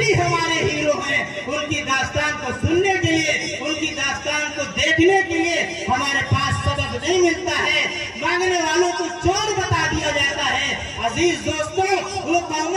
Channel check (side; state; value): both; identical; correlation 1.00